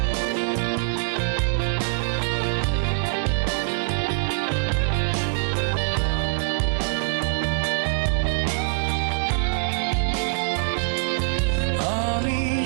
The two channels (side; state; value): left; silent; 61 dB below the other